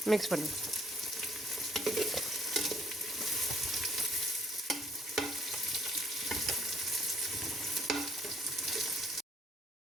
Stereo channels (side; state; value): both; normal; correlation 0.63